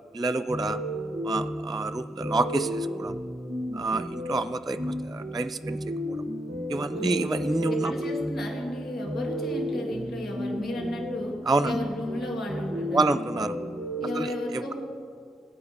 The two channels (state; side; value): normal; both; correlation 0.78